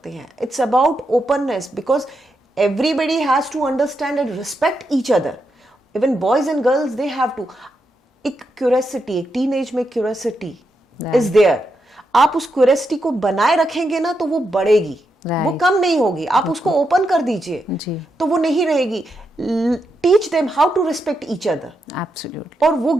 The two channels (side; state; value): both; normal; correlation 0.84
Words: हैं। It's about openness, because everybody has to understand and respect each other. Even boys and girls, they have to. एक क्यूरियोसिटी, एक टीनेज में क्यूरियोसिटी इज देयर. आप उस क्यूरियोसिटी को बनाए रखेंगे ना तो वो बढ़ेगी, वो कम नहीं होगी. आप उसको ओपन कर दीजिए तो वो नहीं रहेगी. Teach them how to respect each other. Absolutely. और वो